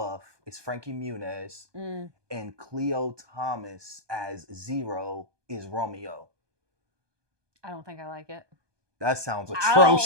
is Frankie Muniz and Cleo Thomas as Zero is Romeo. I don't think I like it. That sounds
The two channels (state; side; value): late; left; 1.2 ms